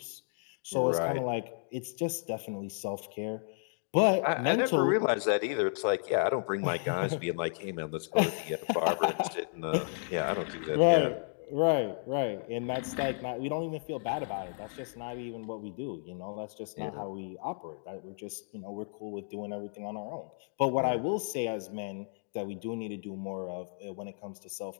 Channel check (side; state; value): right; silent; digital silence